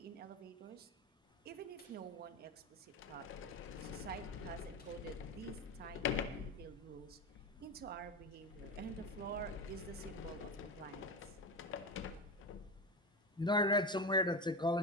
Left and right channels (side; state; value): both; normal; correlation 0.21